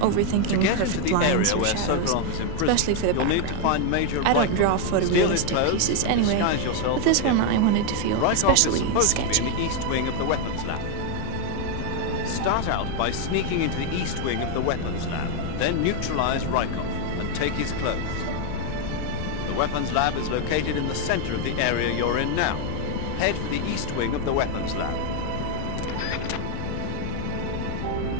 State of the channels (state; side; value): different; both; correlation 0.00